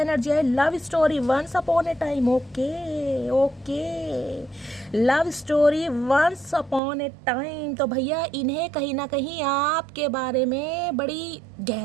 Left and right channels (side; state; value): left; drops out; at 6.8 s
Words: है love story once upon a time. Okay okay, love story once upon a time. तो भैया इन्हें कहीं ना कहीं आपके बारे में बड़ी